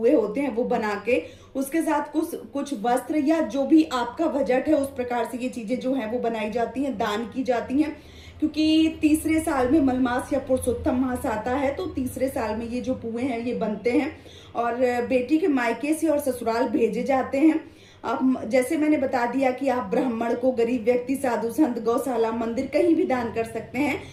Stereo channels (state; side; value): identical; both; correlation 1.00